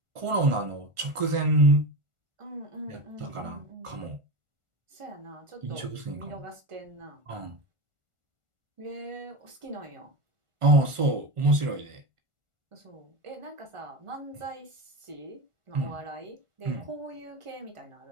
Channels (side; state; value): left; late; 1.4 ms